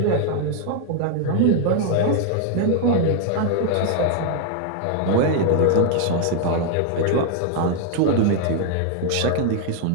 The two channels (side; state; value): both; different; correlation 0.00